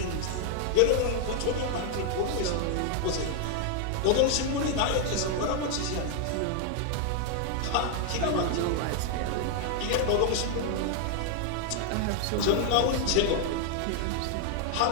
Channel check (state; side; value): different; both; correlation 0.00